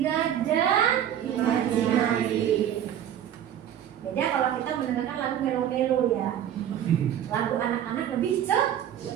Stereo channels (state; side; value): quieter; left; 10.3 dB